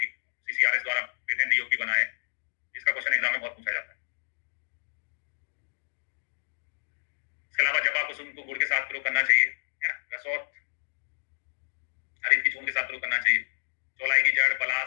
सीसीआरएस द्वारा पेटेंट योग भी बना है, जिसका क्वेश्चन एग्जाम में बहुत पूछा जाता है। इसके अलावा जपा कुसुम को गुड़ के साथ प्रयोग करना चाहिए, है ना, रसौत हरित की चूर्ण के साथ प्रयोग करना चाहिए, चौलाई की जड़,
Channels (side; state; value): right; silent; digital silence